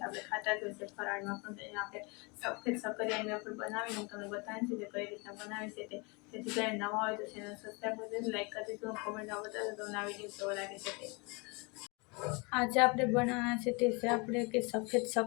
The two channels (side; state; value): right; quieter; 29.4 dB